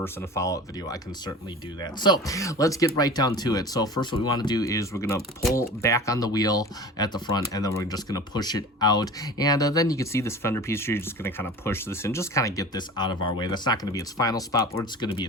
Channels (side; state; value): both; normal; correlation 0.37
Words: in a follow-up video, I can certainly do that. So let's get right down to it. So first, what we want to do is we're going to pull back on the wheel at the front, and then we're just going to push it out. And then you can see this fender piece here. You're just going to kind of push this in, just kind of get this out of our way. That's not going to be its final spot, but it's going to be